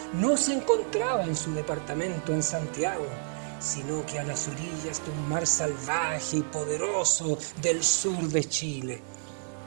no se encontraba en su departamento en Santiago, sino que a las orillas de un mar salvaje y poderoso del sur de Chile.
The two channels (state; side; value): silent; left; digital silence